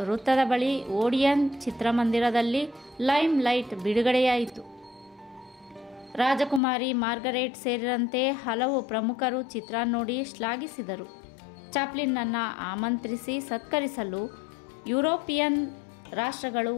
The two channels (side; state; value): right; drops out; at 6.6 s